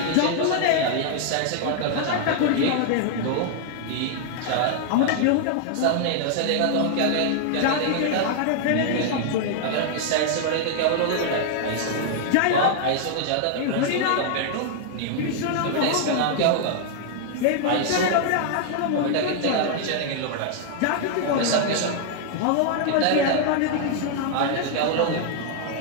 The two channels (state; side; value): different; both; correlation 0.00